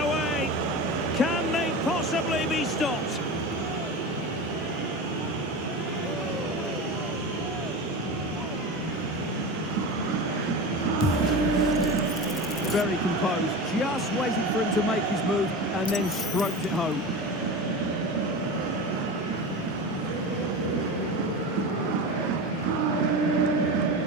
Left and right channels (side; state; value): both; normal; correlation 0.27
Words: Can they possibly be stopped? Very composed, just waiting for him to make his move and then stroked it home.